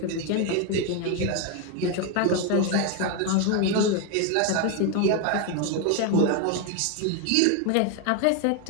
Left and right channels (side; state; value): both; different; correlation 0.01